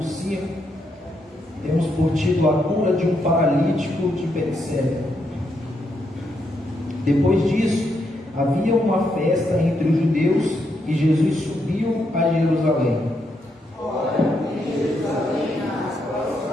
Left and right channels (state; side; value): normal; both; correlation 0.79